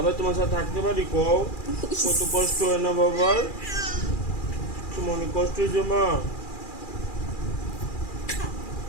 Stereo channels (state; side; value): late; right; 2.4 ms